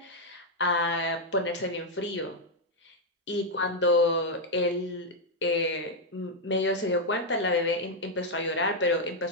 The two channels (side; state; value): both; normal; correlation 0.00